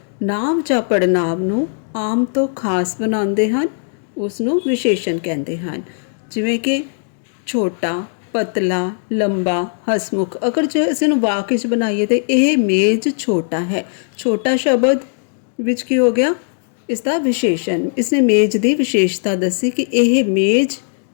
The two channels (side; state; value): right; silent; digital silence